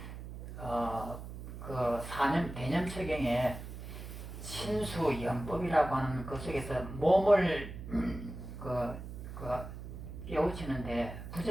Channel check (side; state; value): right; noise; hum, 10 dB below the sound